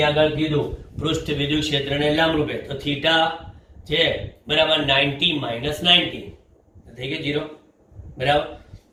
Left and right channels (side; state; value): both; identical; correlation 1.00